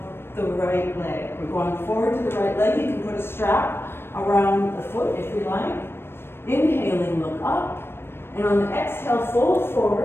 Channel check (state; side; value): late; right; 0.11 ms